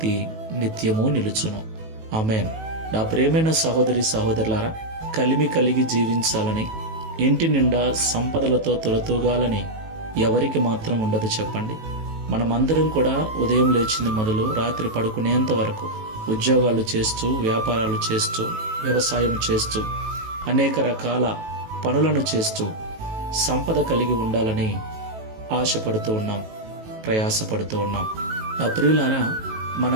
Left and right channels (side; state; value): left; late; 18 ms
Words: నిత్యము నిలుచును. ఆమేన్. నా ప్రేమైన సహోదరి సహోదరులారా, కలిమి కలిగి జీవించాలని, ఇంటి నిండా సంపదలతో తులతూగాలని ఎవరికి మాత్రం ఉండదు చెప్పండి. మనమందరం కూడా ఉదయం లేచింది మొదలు రాత్రి పడుకునేంత వరకు ఉద్యోగాలు చేస్తూ, వ్యాపారాలు చేస్తూ, వ్యవసాయం చేస్తూ, అనేక రకాల పనులను చేస్తూ సంపద కలిగి ఉండాలని ఆశపడుతూ ఉన్నాం, ప్రయాసపడుతూ ఉన్నాం. నా ప్రియులారా, మన